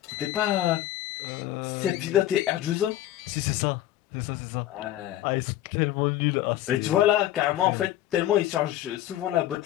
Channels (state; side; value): quieter; right; 13.4 dB